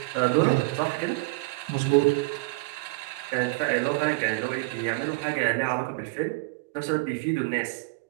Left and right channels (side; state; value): left; quieter; 26.2 dB